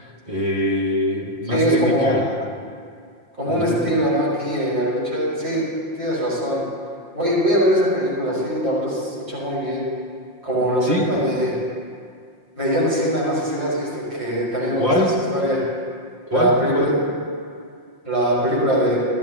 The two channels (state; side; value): late; left; 5.7 ms